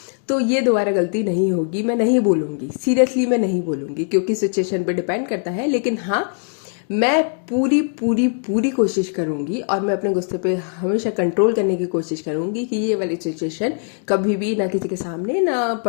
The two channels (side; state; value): right; silent; 55 dB below the other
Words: तो ये दोबारा गलती नहीं होगी, मैं नहीं बोलूँगी, सीरियसली मैं नहीं बोलूँगी क्योंकि सिचुएशन पे डिपेंड करता है। लेकिन हाँ, मैं पूरी पूरी पूरी कोशिश करूँगी और मैं अपने गुस्से पे हमेशा कंट्रोल करने की कोशिश करूँगी कि ये वाली सिचुएशन कभी भी ना किसी के सामने ना